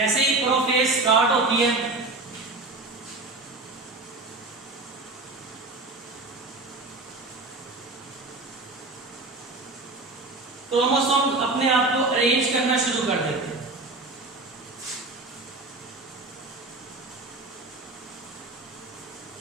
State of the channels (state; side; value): quieter; left; 3.2 dB